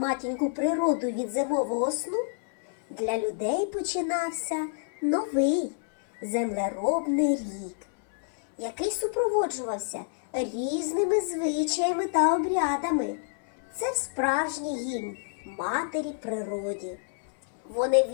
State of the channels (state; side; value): silent; right; 59 dB below the other